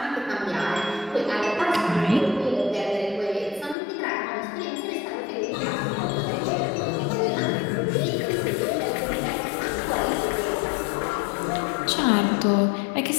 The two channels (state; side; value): drops out; right; at 3.8 s